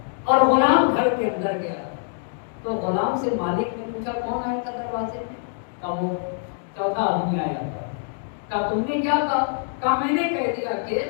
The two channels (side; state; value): right; silent; digital silence